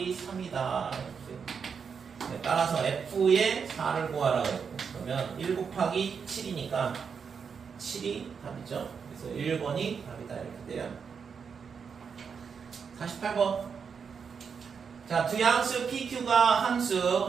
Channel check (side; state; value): left; quieter; 6.2 dB